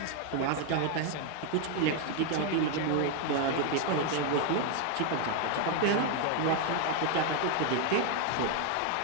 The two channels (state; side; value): different; both; correlation 0.01